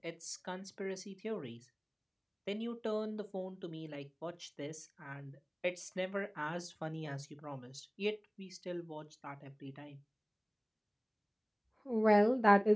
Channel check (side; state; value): both; identical; correlation 1.00